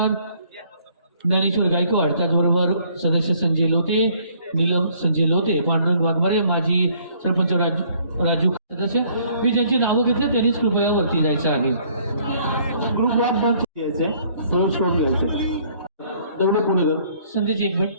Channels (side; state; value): both; inverted; correlation -0.61